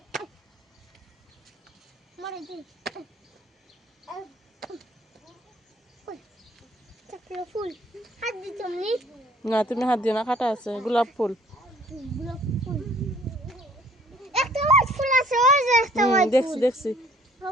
ফুল হাত দিতাম নি না তুমি হাত দিও না, কাটা আছে। গোলাপ ফুল। গোলাপ ফুল একটা হোয়াইট ফুল আছে, ওই যে একটা হোয়াইট দেখছি ফুল। দেখছি।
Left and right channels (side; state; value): both; normal; correlation 0.58